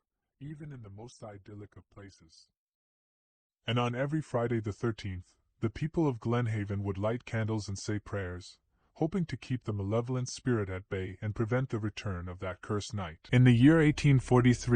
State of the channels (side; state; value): both; identical; correlation 1.00